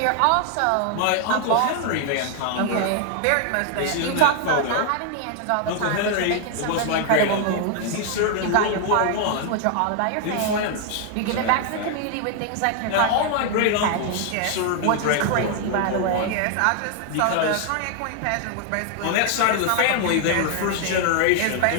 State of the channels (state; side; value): different; both; correlation 0.00